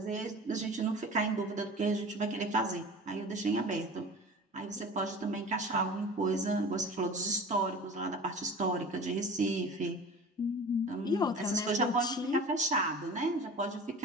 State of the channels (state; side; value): normal; both; correlation 0.38